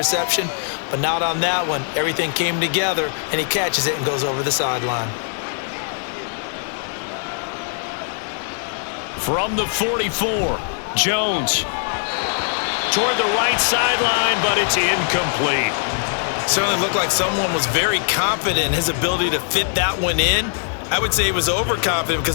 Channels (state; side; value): silent; right; digital silence